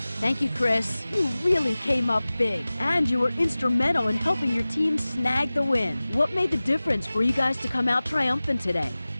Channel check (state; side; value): inverted; both; correlation -0.98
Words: Thank you, Chris. You really came up big, and you were instrumental in helping your team snag the win. What made the difference for you guys to come out triumphant today?